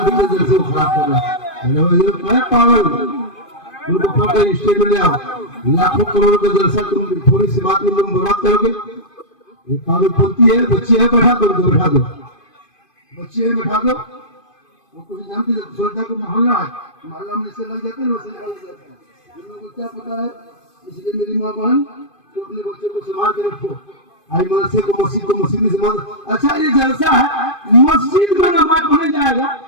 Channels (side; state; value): right; late; 2.5 ms